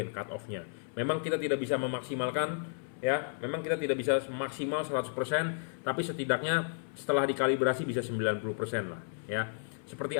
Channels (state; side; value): silent; right; 56 dB below the other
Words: cut off-nya. Memang kita tidak bisa memaksimalkan ya, memang kita tidak bisa maksimal 100%, tapi setidaknya setelah dikalibrasi bisa 90% lah ya. Seperti